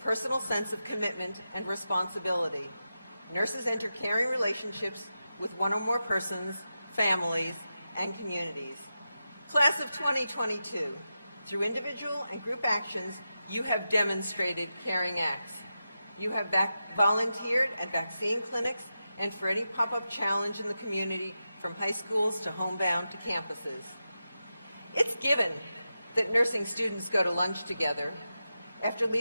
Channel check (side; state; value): both; inverted; correlation -0.90